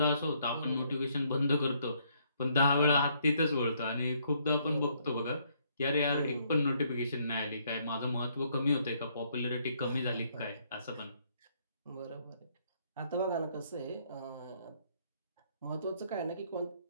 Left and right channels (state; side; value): inverted; both; correlation -0.69